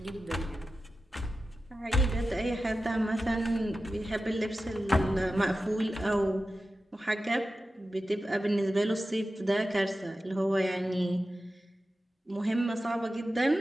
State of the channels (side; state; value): both; normal; correlation 0.93